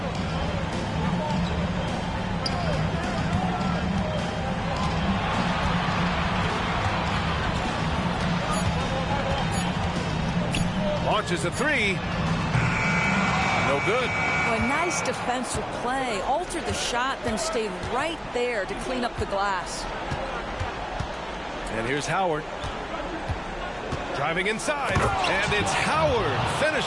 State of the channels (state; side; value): identical; both; correlation 1.00